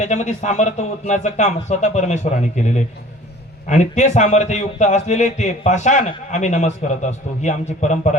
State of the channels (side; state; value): both; normal; correlation 0.47